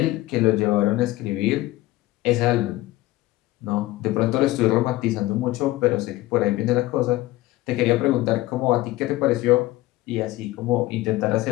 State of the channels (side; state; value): right; quieter; 17.5 dB